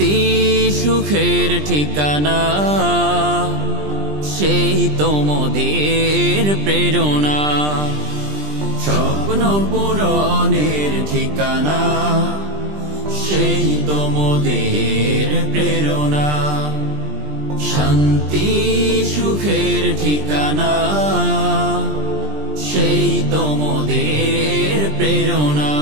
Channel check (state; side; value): late; left; 20 ms